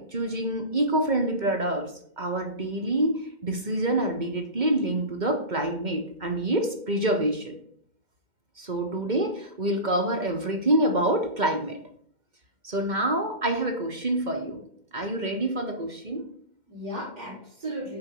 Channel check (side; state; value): left; late; 2.1 ms